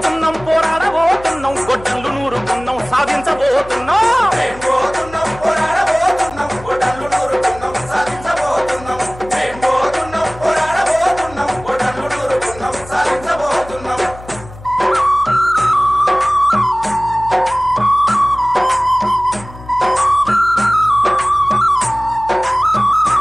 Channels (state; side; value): noise; left; hum, 17 dB below the sound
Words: పోరాడబోతున్నాం గొడ్డళ్ళు నూరుకున్నాం సాధించబోతున్నాం మేం పోతున్నాం పోరాడబోతున్నాం గొడ్డళ్ళు నూరుకున్నాం సాధించబోతున్నాం. మేం పోతున్నాం పోరాడబోతున్నాం గొడ్డళ్ళు నూరుకున్నాం సాధించబోతున్నాం.